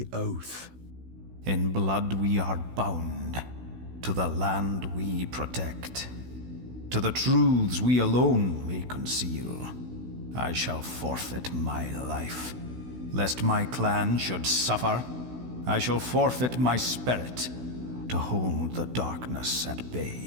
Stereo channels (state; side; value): late; left; 16 ms